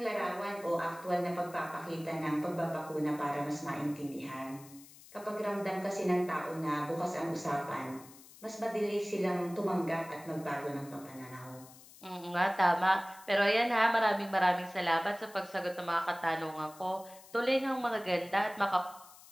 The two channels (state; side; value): noise; left; hiss, 21 dB below the sound